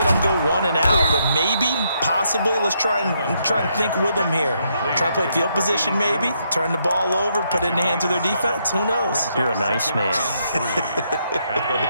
go 1 and out, but maybe, possibly, let's try and think with them here. Try and play field position maybe, turn the ball over, put it in the hands of their defense. Who knows? You're a nice man.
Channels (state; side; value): inverted; both; correlation -0.76